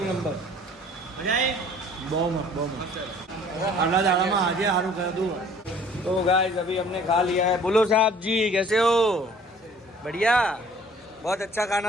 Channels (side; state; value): both; normal; correlation 0.53